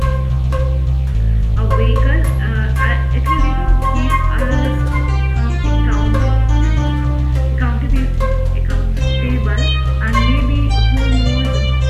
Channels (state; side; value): identical; both; correlation 1.00